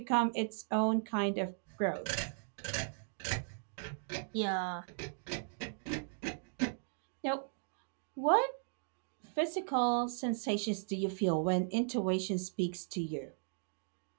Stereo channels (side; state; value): left; silent; digital silence